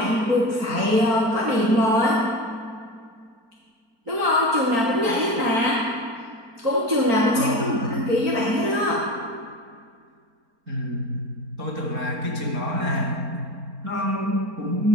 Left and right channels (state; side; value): late; left; 4.4 ms